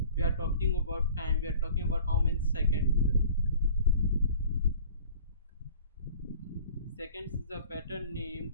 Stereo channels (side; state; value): both; inverted; correlation -0.47